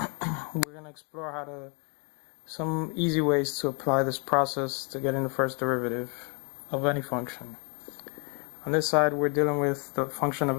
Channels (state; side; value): quieter; right; 35.1 dB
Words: going to explore some easy ways to apply this process to getting the first derivative of any function. On this side we're dealing with the function of